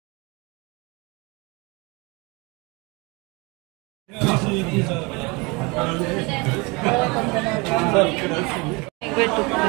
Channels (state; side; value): quieter; left; 27.0 dB